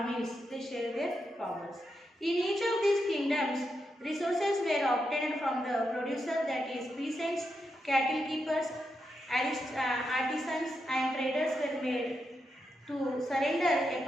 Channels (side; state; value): both; normal; correlation 0.85